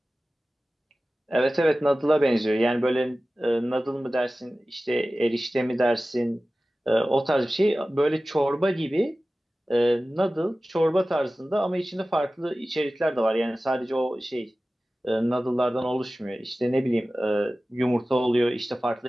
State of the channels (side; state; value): both; normal; correlation 0.96